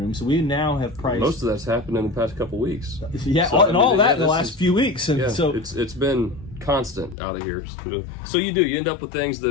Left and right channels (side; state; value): right; drops out; at 7.2 s